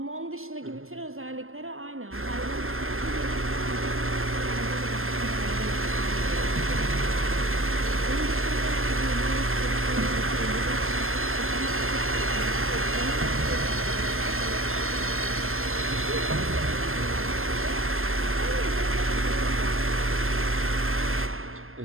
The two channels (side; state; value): left; late; 0.61 ms